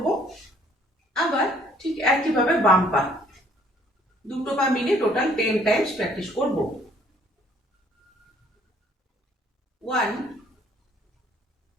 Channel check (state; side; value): normal; both; correlation 0.61